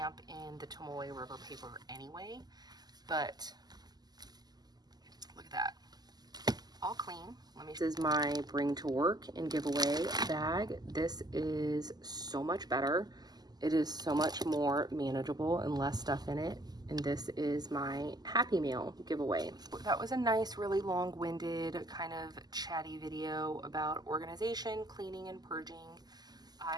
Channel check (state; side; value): late; left; 0.20 ms